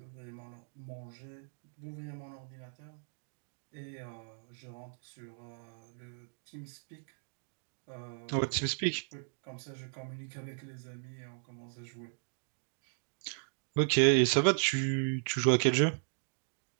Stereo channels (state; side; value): silent; left; digital silence